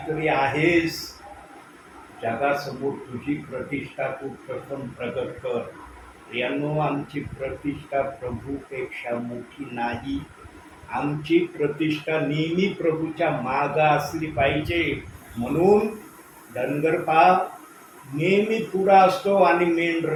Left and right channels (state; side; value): identical; both; correlation 1.00